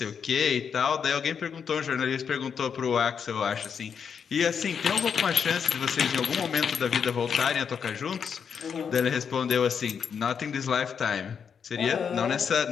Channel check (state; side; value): quieter; right; 6.9 dB